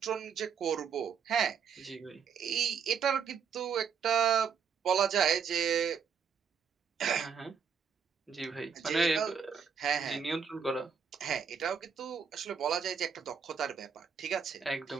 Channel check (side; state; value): left; quieter; 6.6 dB